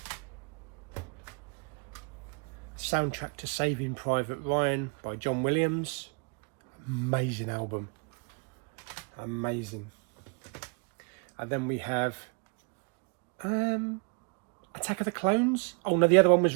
Soundtrack to Saving Private Ryan by John Williams. Amazing album. Amazing. And then we have Attack of the Clones. Oh no, the other one was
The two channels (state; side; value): quieter; left; 34.8 dB